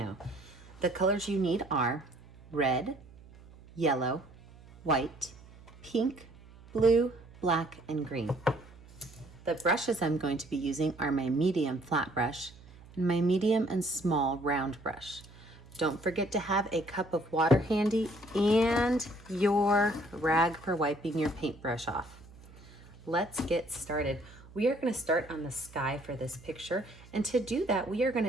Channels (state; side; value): noise; right; hum, 22 dB below the sound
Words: The colors you need are red, yellow, white, pink, blue, black, and green. The brushes I'm going to be using are my medium flat brush and my medium and small round brush. Don't forget to have a cup of water handy and your rag for wiping your paintbrush off. Let's get started. We are going to start on the sky for this picture, and to do that we are going